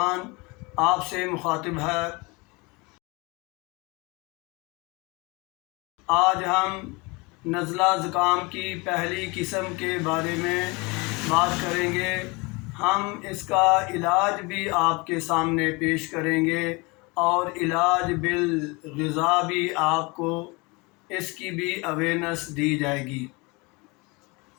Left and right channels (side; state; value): right; quieter; 26.8 dB